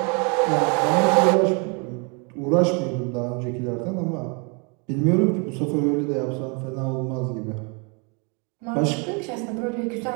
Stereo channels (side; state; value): left; quieter; 34.1 dB